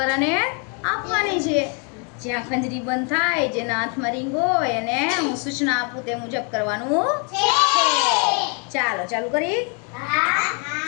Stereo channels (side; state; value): right; quieter; 37.1 dB